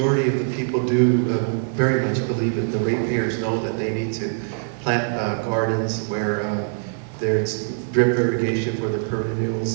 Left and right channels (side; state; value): left; silent; digital silence